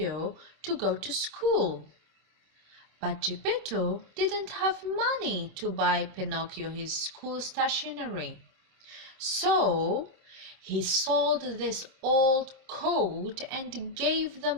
to go to school. But Gepetto didn't have money to buy Pinocchio his school stationery. So he sold this old coat and gave the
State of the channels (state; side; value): late; left; 26 ms